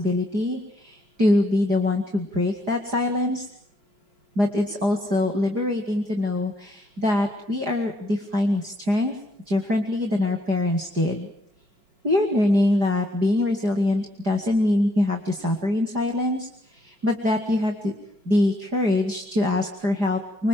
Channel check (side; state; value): left; late; 4.9 ms